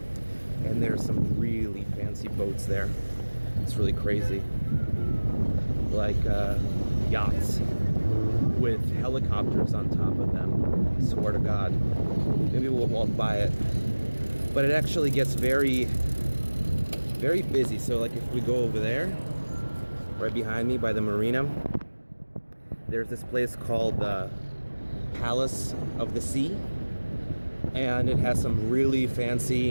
And there's some really fancy boats there. It's really crazy. Like yachts with helicopters on top of them. I swear to God. Maybe we'll walk by it. But it actually gets very, very busy. So like if we go over there, right behind me by the marina, there's this place called the Palace of the Sea. And it has some really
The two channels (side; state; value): both; inverted; correlation -1.00